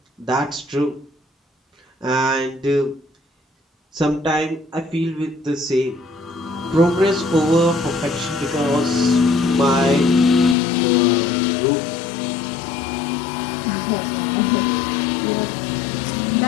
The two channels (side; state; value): right; drops out; at 10.6 s